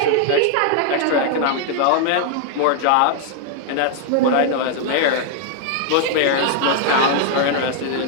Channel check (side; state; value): both; different; correlation 0.00